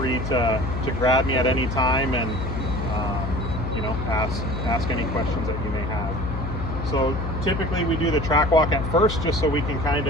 to grab me at any time and you know, ask any questions that you may have. So typically we do the track walk at first, just so we can kind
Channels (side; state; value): left; noise; hum, 4 dB below the sound